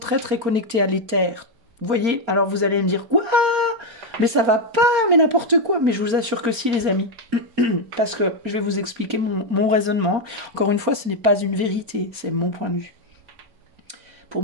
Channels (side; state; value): left; late; 4.3 ms